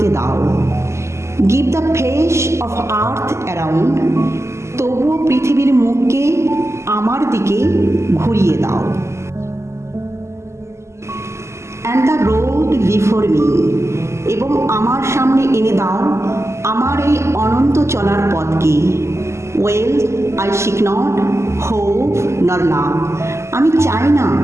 দাও। Give the face of earth around, তবুও পৃথিবীর মুখকে আমার দিকে ঘুরিয়ে দাও। And the road before me, এবং আমার সামনে এনে দাও আমার এই অনন্ত চলার পথকে। Well I seek not hope nor love, আমি চাই না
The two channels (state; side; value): late; left; 0.13 ms